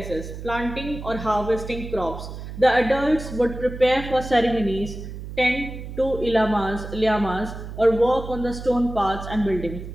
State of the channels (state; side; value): noise; right; hum, 10 dB below the sound